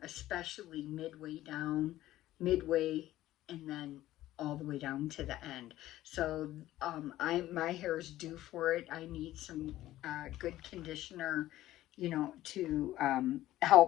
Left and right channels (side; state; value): right; quieter; 14.9 dB